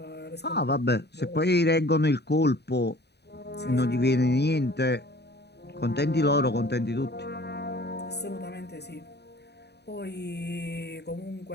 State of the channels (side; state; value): right; late; 0.48 ms